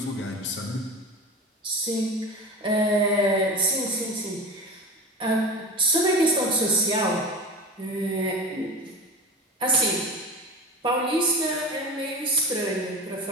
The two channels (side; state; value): both; normal; correlation 0.31